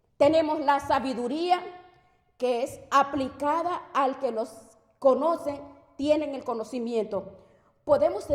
Tenemos la sabiduría que es aplicada al que los conoce, tienen el conocimiento. Podemos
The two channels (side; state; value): both; identical; correlation 1.00